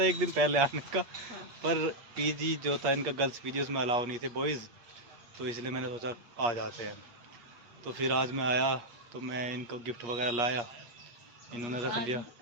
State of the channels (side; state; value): left; late; 8.4 ms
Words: एक दिन पहले आने का, पर पीजी जो था इनका, गर्ल्स पीजी, उसमें अलाउ नहीं थे बॉयज़, तो इसलिए मैंने सोचा आ जाते हैं। तो फिर आज मैं आया, तो मैं इनको गिफ्ट वगैरह लाया, इन्होंने रख